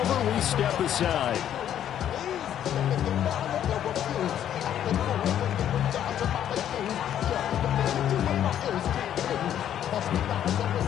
we step aside.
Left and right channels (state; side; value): quieter; right; 10.4 dB